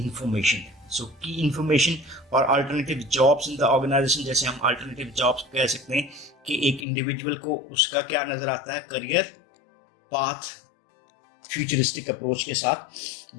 So key information और alternative jobs in the organisation, जैसे हम अल्टरनेटिव जॉब्स कह सकते हैं कि एक इंडिविजुअल को उसका क्या नजर आता है, करियर पाथ फ्यूचरिस्टिक अप्रोच के साथ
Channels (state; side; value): drops out; right; at 6.9 s